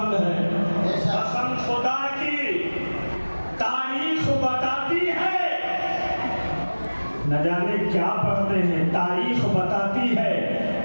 ہے. قسم خدا کی تاریخ بتاتی ہے, نہ جانے کیا پڑھتے ہیں, تاریخ بتاتی ہے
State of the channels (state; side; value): inverted; both; correlation -1.00